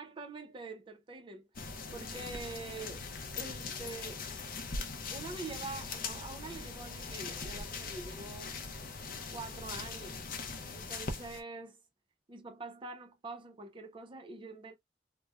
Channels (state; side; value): normal; both; correlation 0.32